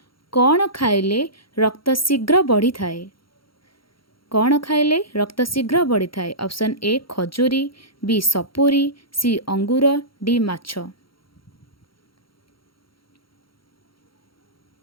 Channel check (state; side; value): late; right; 0.74 ms